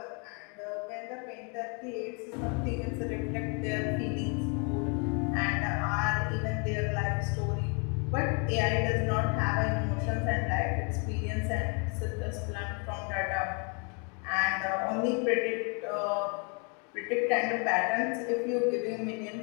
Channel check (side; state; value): right; quieter; 35.6 dB